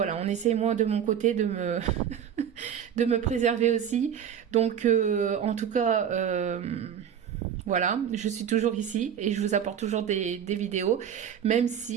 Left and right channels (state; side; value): quieter; left; 8.9 dB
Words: on essaie moi de mon côté de me préserver aussi. Donc en tout cas voilà, je suis toujours ici et je vous apporte toujours des vidéos, même